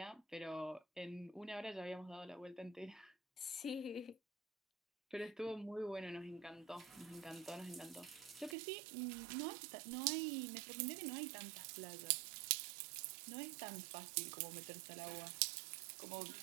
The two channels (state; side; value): drops out; left; at 8.6 s